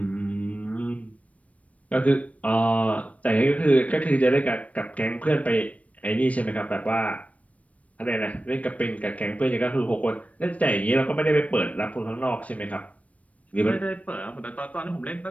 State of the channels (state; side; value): late; right; 0.066 ms